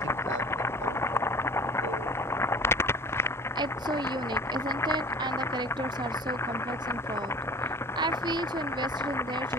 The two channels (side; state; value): both; normal; correlation 0.44